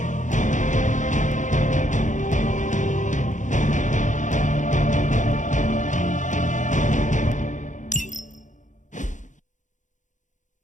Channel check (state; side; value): late; right; 0.36 ms